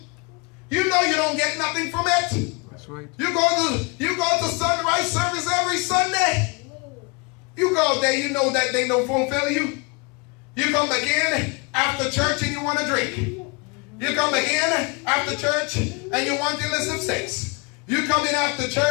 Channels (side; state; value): right; quieter; 30.2 dB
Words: You know you don't get nothing from it. That's right. You go to sunrise service every Sunday. You go there, you know that they don't fulfill you. You come back in after church and you want to drink. You come back in after church and you want illicit sex. You come in after